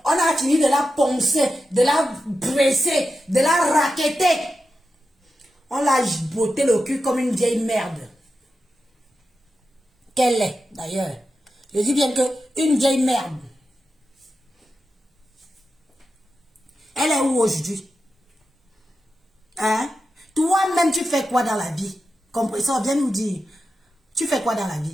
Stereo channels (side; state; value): both; normal; correlation 0.90